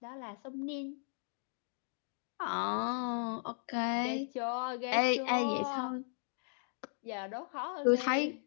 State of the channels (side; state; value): right; silent; digital silence